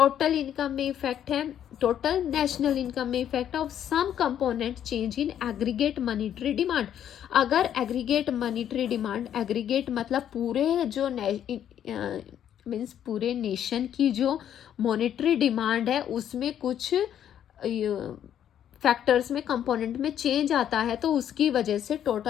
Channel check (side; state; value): right; quieter; 10.0 dB